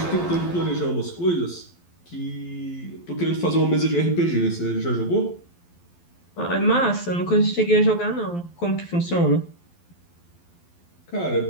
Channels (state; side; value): late; right; 12 ms